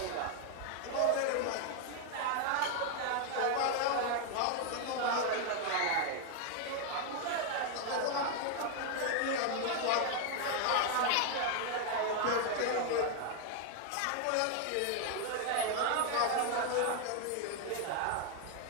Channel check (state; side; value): different; both; correlation 0.00